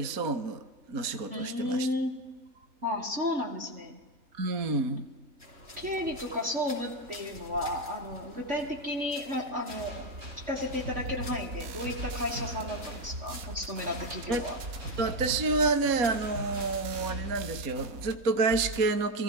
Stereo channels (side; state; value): left; late; 4.2 ms